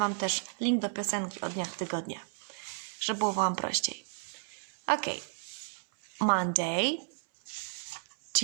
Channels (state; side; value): silent; left; 56 dB below the other